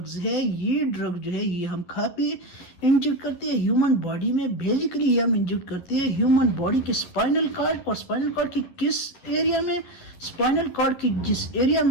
ہے، یہ ڈرگ جو ہے یہ ہم کھا پی انجیکٹ کرتے ہیں ہیومن باڈی میں۔ بیسیکلی یہ ہم انجیکٹ کرتے ہیں ہیومن باڈی کے اسپائنل کارڈ، اور اسپائنل کارڈ کی کس ایریا میں؟ اسپائنل کارڈ کی جس ایریا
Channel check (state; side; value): late; right; 11 ms